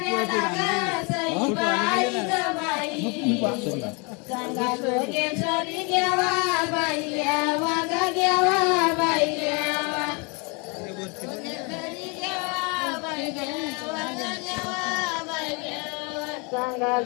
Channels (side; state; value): right; quieter; 31.7 dB